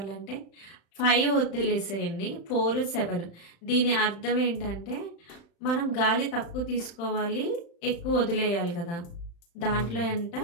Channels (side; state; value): right; late; 35 ms